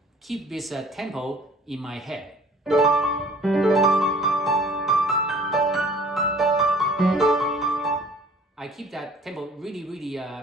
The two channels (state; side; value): normal; both; correlation 0.51